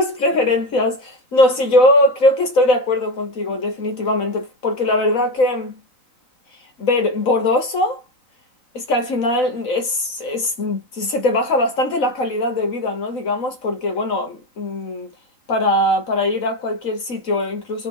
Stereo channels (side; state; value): right; late; 4.0 ms